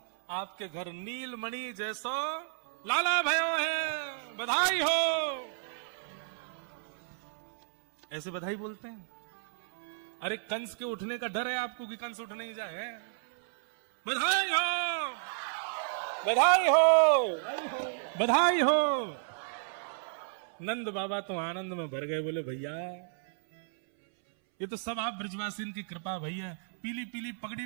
आपके घर नीलमणि जैसो लाला भयो है, बधाई हो। ऐसे बधाई बोलते हैं। अरे कंस के उठने का डर है आपको कि कंस उठ नहीं जाए? बधाई हो, बधाई हो, बधाई हो। नंद बाबा तो आनंद में भर गए, बोले भैया ये तो सब आप ब्रजवासी की कृपा भैया। पीली पीली पगड़ी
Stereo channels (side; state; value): left; silent; 56 dB below the other